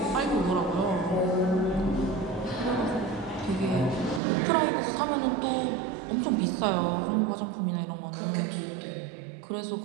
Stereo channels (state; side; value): drops out; left; at 4.2 s